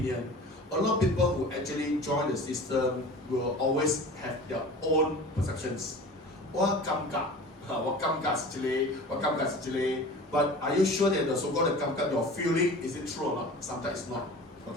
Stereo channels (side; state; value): both; normal; correlation 0.39